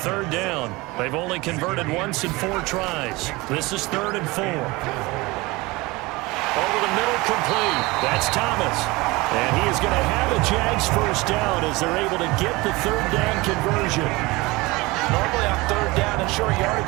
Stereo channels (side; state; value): left; quieter; 22.6 dB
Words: down. They've only converted once in 4 tries. This is 3rd and 4. Over the middle, complete. That's Thomas. And he is going to have a Jags first down as they're able to get the 3rd down conversion. Normally on 3rd down and short